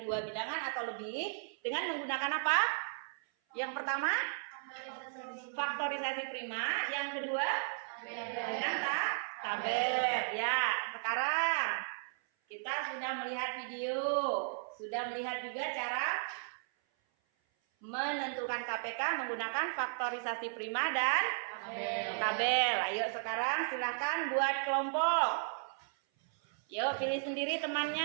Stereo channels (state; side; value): silent; left; 54 dB below the other